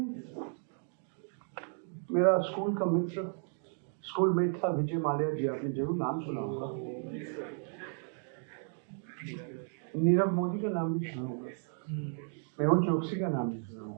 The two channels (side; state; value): left; silent; 55 dB below the other